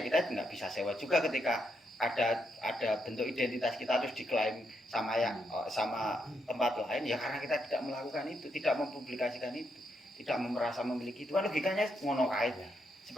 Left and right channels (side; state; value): both; normal; correlation 0.79